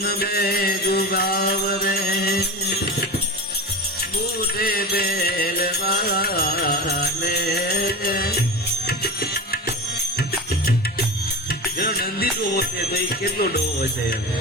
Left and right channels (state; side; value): normal; both; correlation 0.26